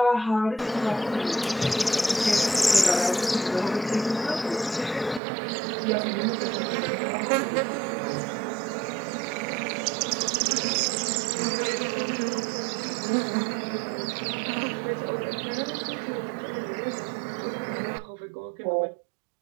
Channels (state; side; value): drops out; left; at 5.2 s